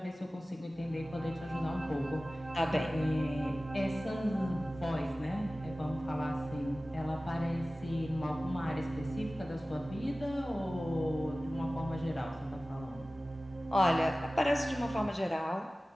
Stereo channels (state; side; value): normal; both; correlation 0.97